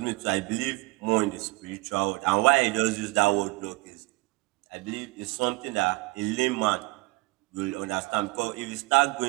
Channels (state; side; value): quieter; left; 24.0 dB